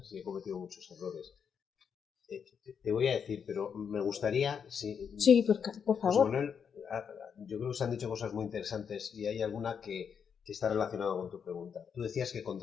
y he cometido muchos errores. Te voy a decir, pero me gustaría... Sí, por favor. Manuel, yo creo que se han dicho cosas muy interesantes y hay alguna que está relacionada con tu pregunta. Tú decías que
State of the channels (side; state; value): right; quieter; 7.0 dB